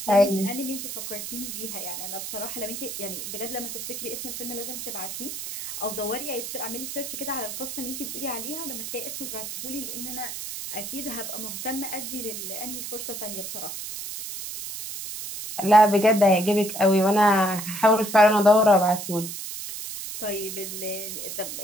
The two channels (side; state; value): right; noise; hiss, 7 dB below the sound